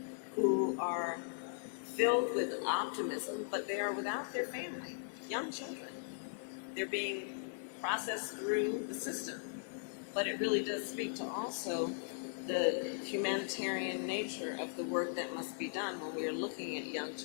who are filled with optimism, but they are without their family, young children. They're being processed through the system. But it really does speak to also the humanitarian nature of the work that must be done when we are looking at young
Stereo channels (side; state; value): right; silent; digital silence